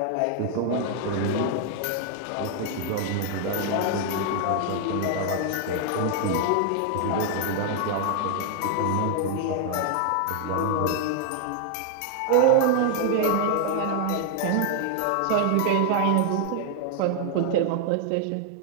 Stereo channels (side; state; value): both; different; correlation 0.00